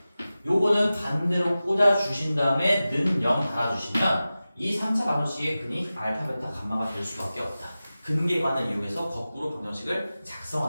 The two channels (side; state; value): both; inverted; correlation -0.95